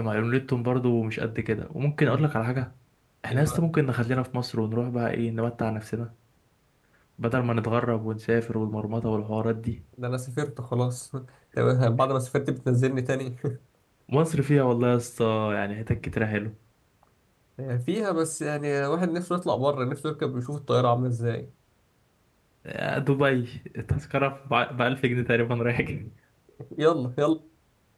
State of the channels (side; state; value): both; identical; correlation 1.00